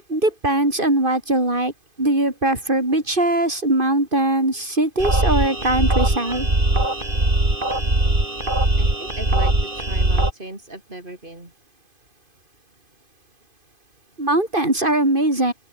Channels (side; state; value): left; late; 2.5 ms